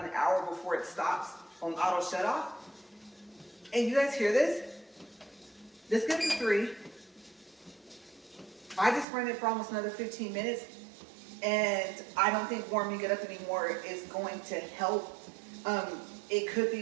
an hour before it stops on auto shut off. And you guys hear this? This gets to 3. I just ran it for almost another 15 minutes. And I don't think warming it up anymore is going to help. It could be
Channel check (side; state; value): left; drops out; at 9.1 s